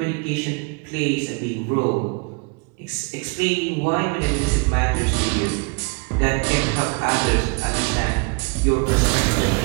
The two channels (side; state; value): left; quieter; 32.1 dB